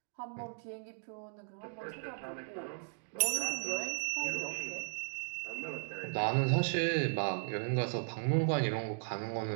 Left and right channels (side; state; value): left; silent; digital silence